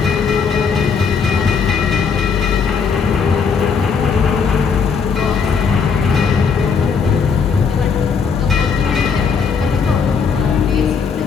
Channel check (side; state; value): right; quieter; 5.8 dB